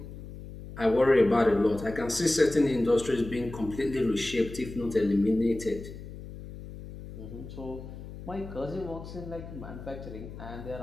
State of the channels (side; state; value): left; noise; hum, 12 dB below the sound